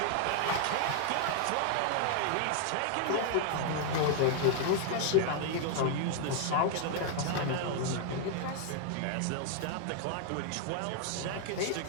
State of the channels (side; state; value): both; different; correlation 0.00